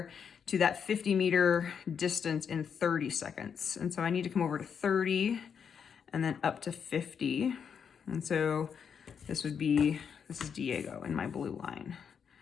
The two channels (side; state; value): right; quieter; 7.1 dB